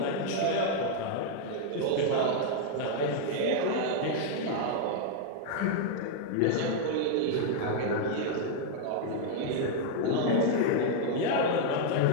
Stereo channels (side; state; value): both; different; correlation -0.01